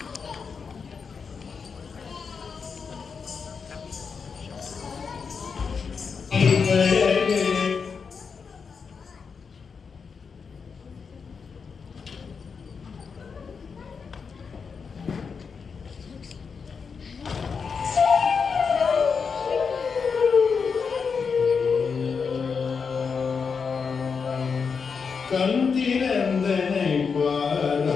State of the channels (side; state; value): right; quieter; 5.7 dB